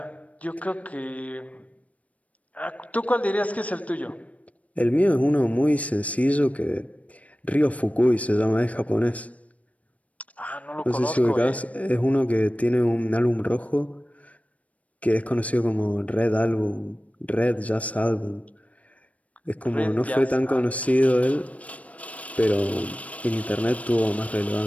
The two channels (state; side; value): late; right; 0.067 ms